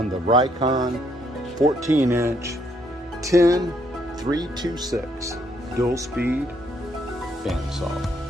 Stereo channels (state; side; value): normal; both; correlation 0.71